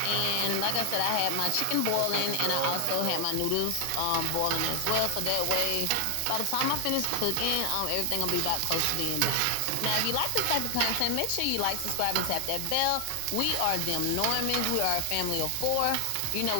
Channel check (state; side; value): different; both; correlation 0.00